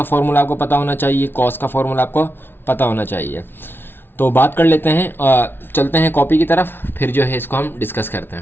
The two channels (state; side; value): late; right; 0.11 ms